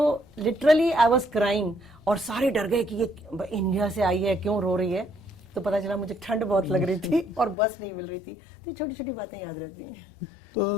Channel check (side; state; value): right; drops out; at 7.6 s